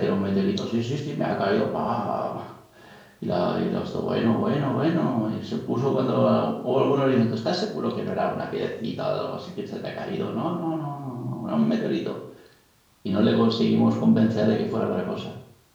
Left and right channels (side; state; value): both; identical; correlation 1.00